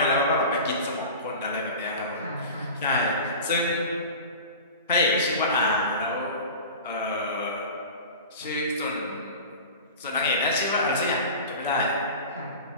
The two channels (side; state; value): both; inverted; correlation -0.33